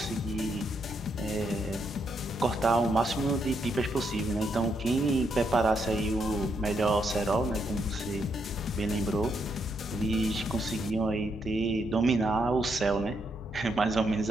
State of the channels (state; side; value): normal; both; correlation 0.78